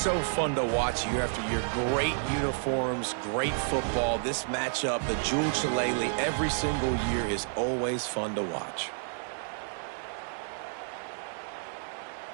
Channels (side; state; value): left; silent; 58 dB below the other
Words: fun to watch year after year. Great uniforms, great football. This matchup, the Jewel Shillelagh, every single year is always fun to watch.